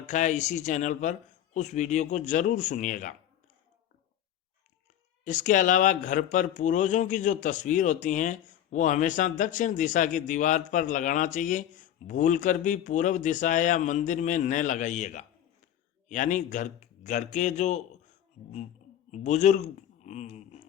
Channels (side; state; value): right; quieter; 10.9 dB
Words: है इसी चैनल पर, उस वीडियो को ज़रूर सुनिएगा। इसके अलावा घर पर पूर्वजों की जो तस्वीर होती हैं वो हमेशा दक्षिण दिशा की दीवार पर लगाना चाहिए। भूलकर भी पूर्व दिशा या मंदिर में न लगाइएगा। यानी घर के जो बुजुर्ग